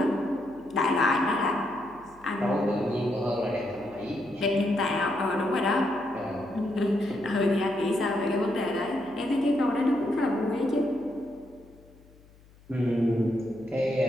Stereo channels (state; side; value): noise; left; hum, 26 dB below the sound